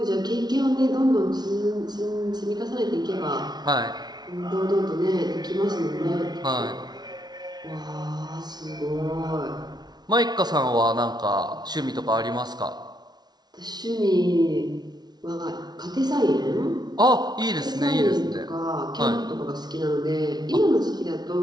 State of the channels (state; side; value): late; left; 0.19 ms